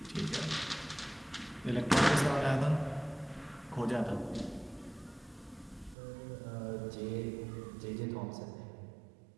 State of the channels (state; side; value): drops out; left; at 6.0 s